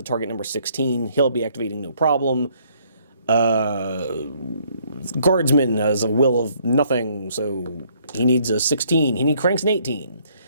target number 16. He'll be activating no problem. Guardsman has a will of nothing, so he needs a 16. He cranks an 18.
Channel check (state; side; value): inverted; both; correlation -0.65